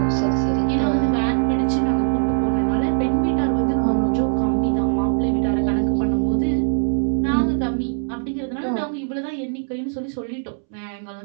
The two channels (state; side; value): silent; left; 65 dB below the other